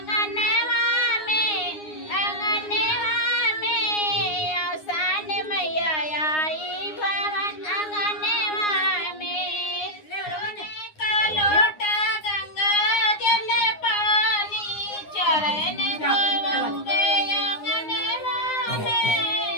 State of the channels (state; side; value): late; right; 9.7 ms